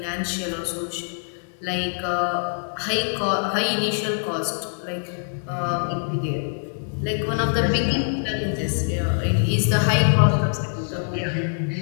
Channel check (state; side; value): silent; right; digital silence